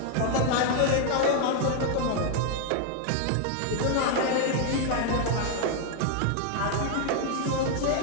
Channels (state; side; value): different; both; correlation 0.00